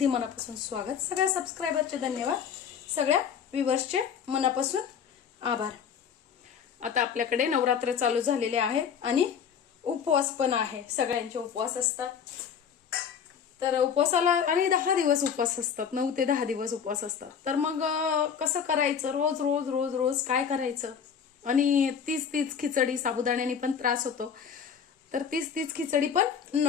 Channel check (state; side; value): quieter; right; 7.4 dB